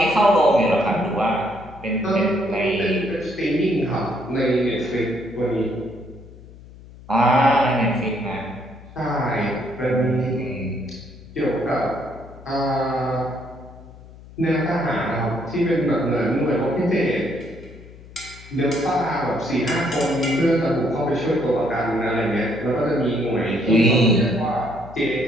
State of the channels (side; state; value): left; noise; hum, 19 dB below the sound